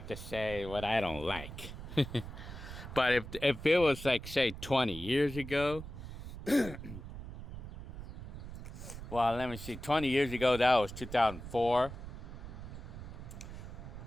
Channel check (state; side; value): noise; right; rumble, 10 dB below the sound